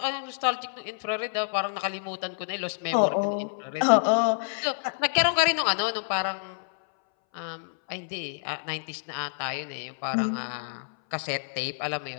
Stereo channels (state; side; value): silent; right; 59 dB below the other